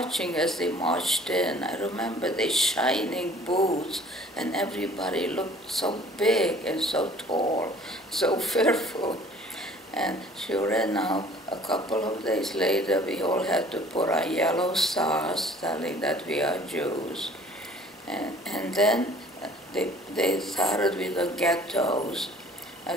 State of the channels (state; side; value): normal; both; correlation 0.52